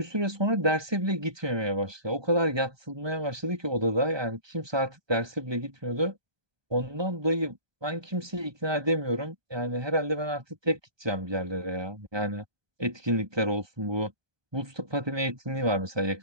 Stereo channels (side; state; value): left; late; 1.2 ms